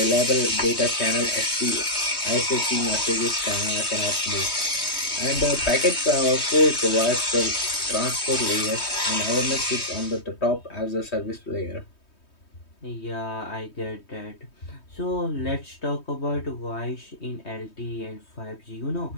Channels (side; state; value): right; late; 3.2 ms